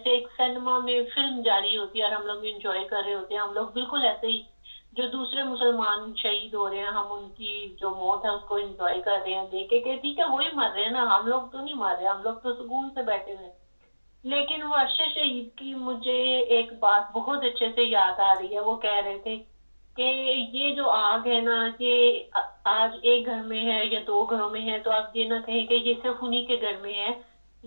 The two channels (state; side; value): inverted; both; correlation -1.00